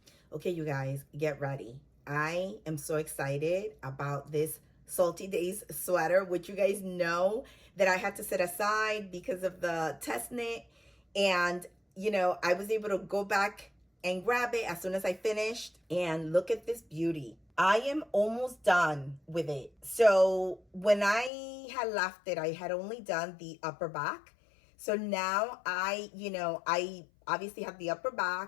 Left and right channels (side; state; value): right; drops out; at 21.3 s